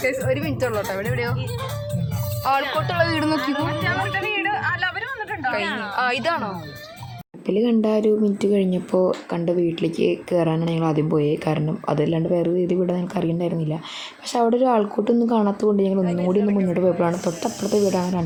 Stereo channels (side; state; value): both; identical; correlation 1.00